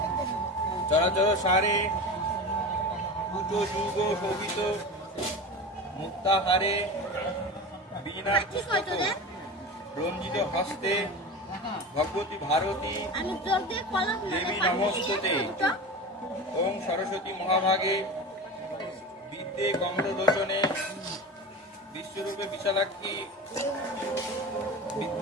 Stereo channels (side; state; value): both; normal; correlation 0.29